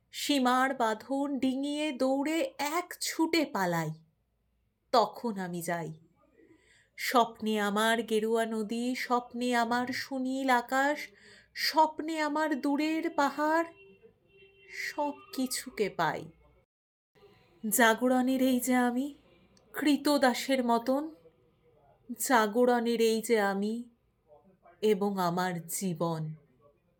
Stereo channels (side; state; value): both; identical; correlation 1.00